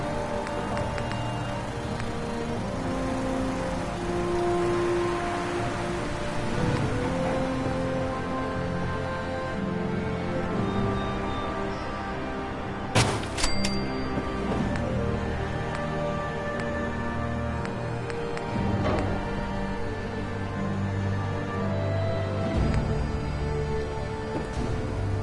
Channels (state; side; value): identical; both; correlation 1.00